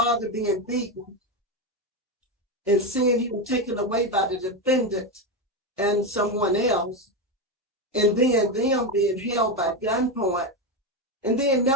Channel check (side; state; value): both; normal; correlation 0.12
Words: being beaten, and seeing him taken away by the defendant and someone else, and then them being held by gunpoint, and then